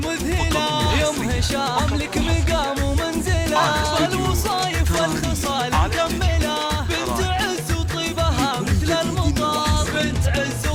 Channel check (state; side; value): identical; both; correlation 1.00